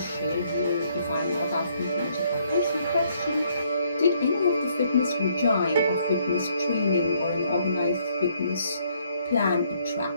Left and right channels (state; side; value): inverted; both; correlation -0.68